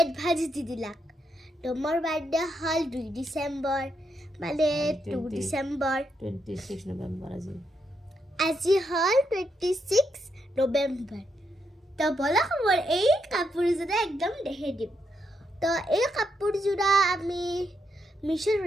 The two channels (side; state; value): both; normal; correlation 0.80